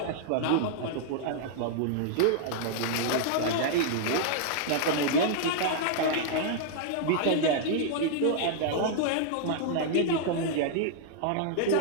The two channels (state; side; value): different; both; correlation -0.01